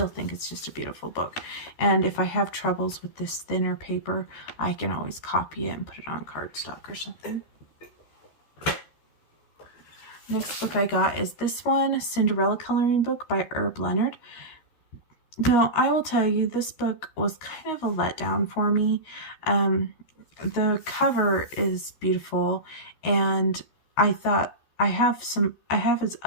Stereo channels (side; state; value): right; late; 13 ms